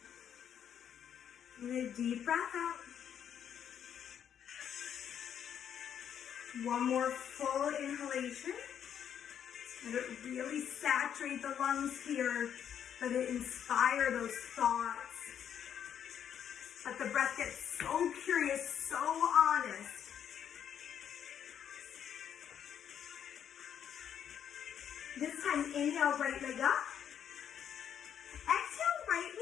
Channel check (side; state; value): right; quieter; 8.9 dB